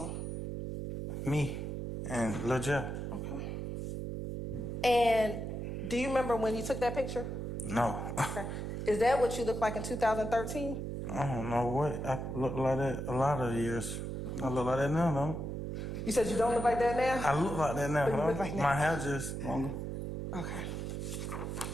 Me and Lil Jeff. Okay. And do you remember when you took that picture? No. Okay. Is that what you looked like in 2013? I don't know what. I look like that a lot of years. I look like that now, though. You said you don't look like that now? I look like that now, But you huh? look like that. My hair just longer. Okay.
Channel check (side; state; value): right; noise; hum, 4 dB below the sound